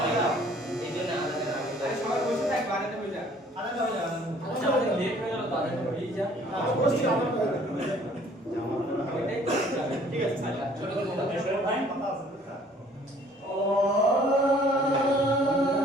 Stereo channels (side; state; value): both; normal; correlation 0.56